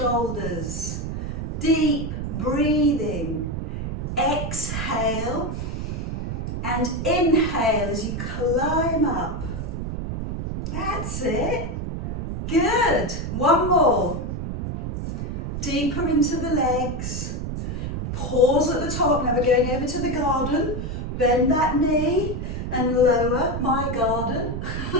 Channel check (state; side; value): noise; right; rumble, 4 dB below the sound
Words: Deep breathing. Exhale and inhale as you climb up. That's it. Good. One more. Deeper into the legs. Pause at the top. Now we're going over to the garden. Bend that knee and lower my garden